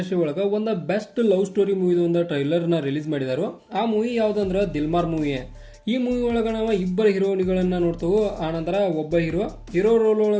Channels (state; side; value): identical; both; correlation 1.00